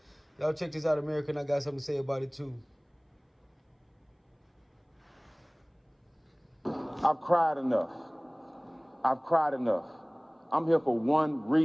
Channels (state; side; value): identical; both; correlation 1.00